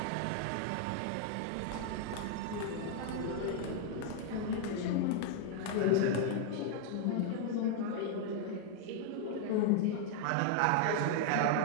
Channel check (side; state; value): both; different; correlation 0.00